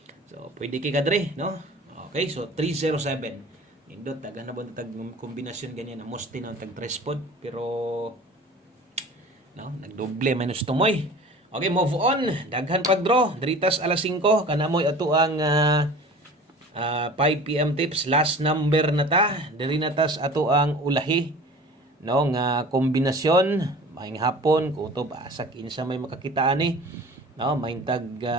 So pwede kay kadre no. Okay so 307 indot taga na tag kombinasyon ganyan na moste na tag trespod pero no nagdoble minus tumoy. Okay move on daghan pag draw diritas alas 5 kana moy ato ang 5 PM tips last number na ta diri natas ato ang ulahi no nga kombinasyon maing hapon kutob asak insa may makakita ani no maing tag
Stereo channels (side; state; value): both; normal; correlation 0.42